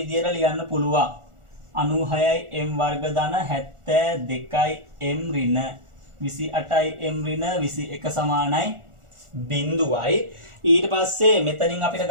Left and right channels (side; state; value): left; late; 1.4 ms